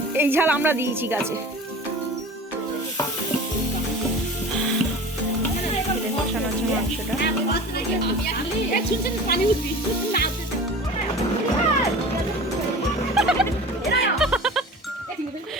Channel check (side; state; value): both; normal; correlation 0.38